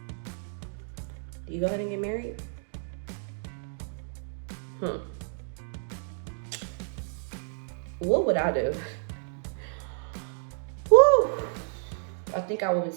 Do you go ahead and get married? What would I do? Woo! I think I would be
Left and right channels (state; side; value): silent; left; digital silence